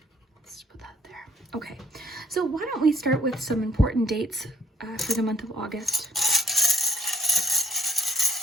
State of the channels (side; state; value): both; normal; correlation 0.63